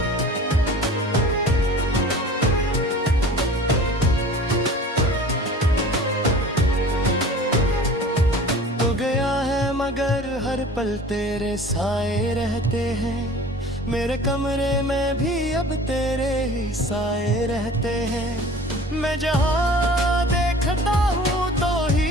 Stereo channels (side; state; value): both; normal; correlation 0.43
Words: मगर हर पल तेरे साए रहते हैं, मेरे कमरे में भी अब तेरे ही साए रहते हैं। मैं जहाँ देखता हूँ तो